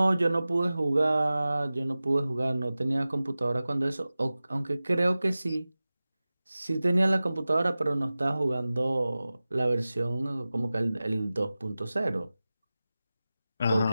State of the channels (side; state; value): both; inverted; correlation -0.96